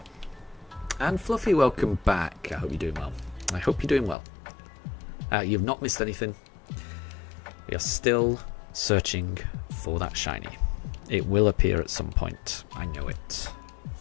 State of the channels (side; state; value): right; drops out; at 4.2 s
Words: And Fluffy, welcome back. I hope you're doing well. I hope you're doing well. You've not missed anything. We are still searching for that shiny. It will appear at some point. I know it.